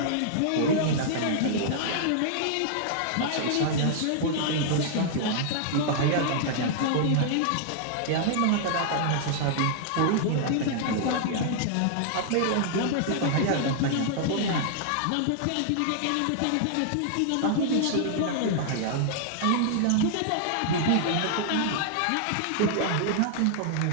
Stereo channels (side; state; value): both; different; correlation -0.01